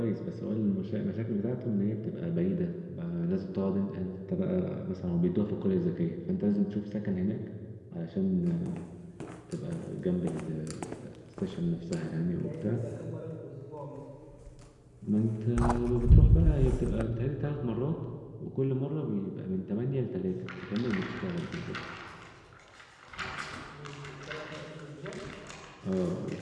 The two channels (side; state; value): both; identical; correlation 1.00